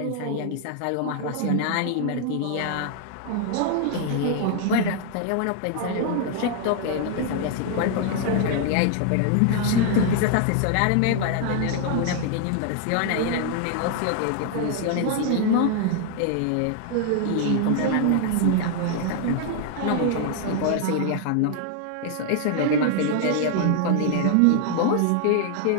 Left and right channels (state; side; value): different; both; correlation 0.00